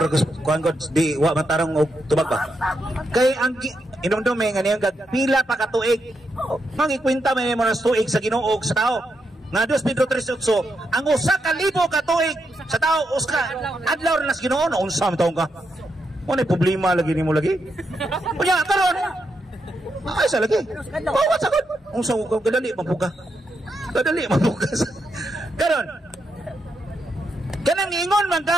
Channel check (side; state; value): both; normal; correlation 0.82